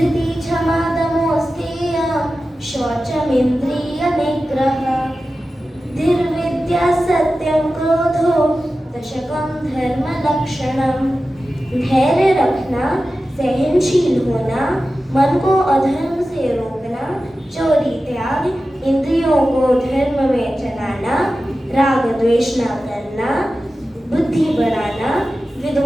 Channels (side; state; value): both; normal; correlation 0.94